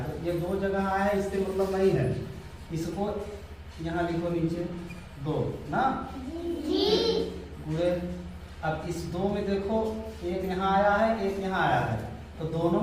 तो ये 2 जगह आया है इससे मतलब नहीं है, इसको यहाँ लिखो नीचे 2 ना गुणे। अब इस 2 में देखो एक यहाँ आया है एक यहाँ आया है, तो दोनों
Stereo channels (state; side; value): identical; both; correlation 1.00